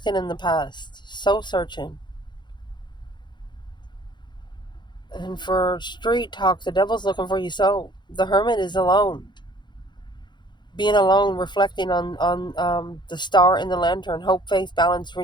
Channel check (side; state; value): right; late; 0.22 ms